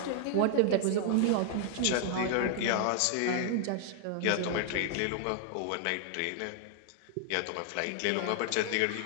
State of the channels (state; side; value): different; both; correlation 0.00